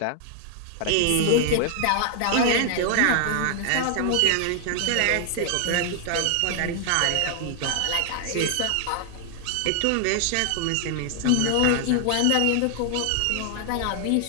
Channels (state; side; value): different; both; correlation 0.00